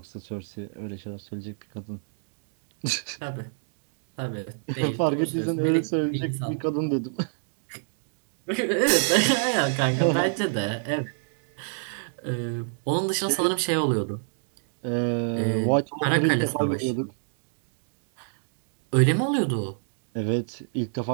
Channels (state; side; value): silent; left; digital silence